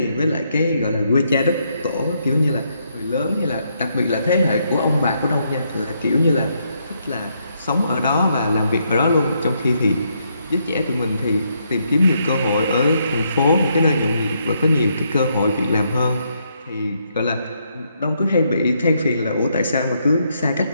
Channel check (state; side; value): inverted; both; correlation -0.76